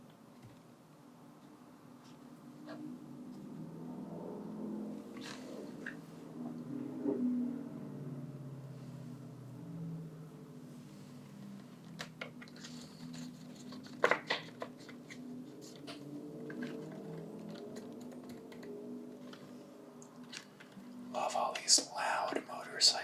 Love all these loud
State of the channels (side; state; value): both; identical; correlation 1.00